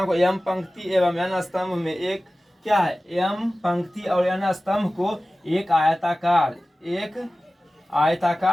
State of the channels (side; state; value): both; normal; correlation 0.96